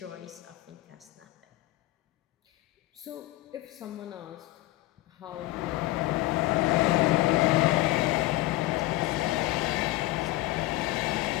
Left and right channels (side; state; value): right; quieter; 18.0 dB